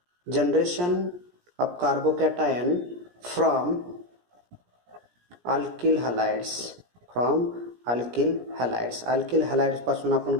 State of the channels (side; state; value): left; late; 17 ms